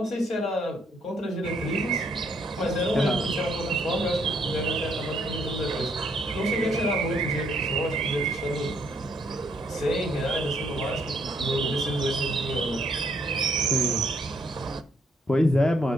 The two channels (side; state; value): both; normal; correlation 0.70